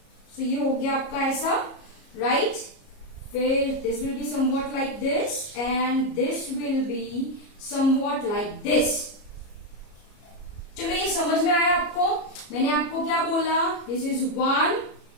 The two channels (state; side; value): late; right; 34 ms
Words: So ये हो गया आपका ऐसा, right? फिर this will be somewhat like this and this will be somewhat like this. चलो ये समझ में आया आपको? मैंने आपको क्या बोला? This is 1